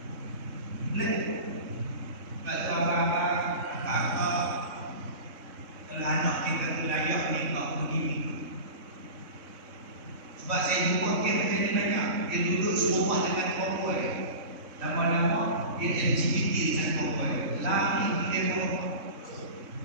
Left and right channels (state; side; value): late; left; 3.6 ms